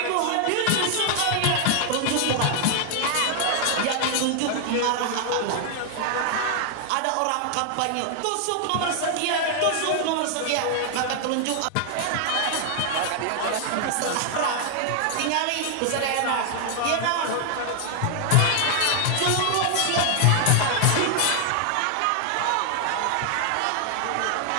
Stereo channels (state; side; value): different; both; correlation 0.00